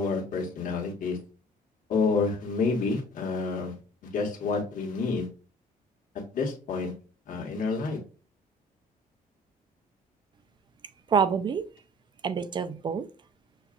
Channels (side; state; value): both; normal; correlation 0.49